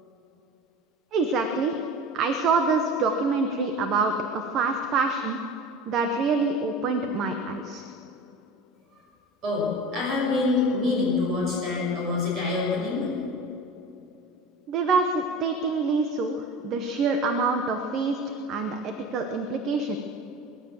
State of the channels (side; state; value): both; normal; correlation 0.35